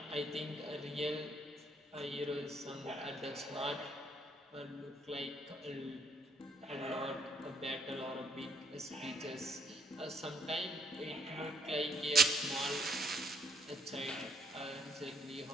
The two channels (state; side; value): normal; both; correlation 0.69